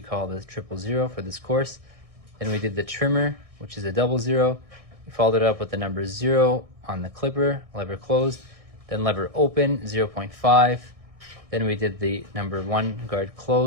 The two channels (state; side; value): late; left; 1.6 ms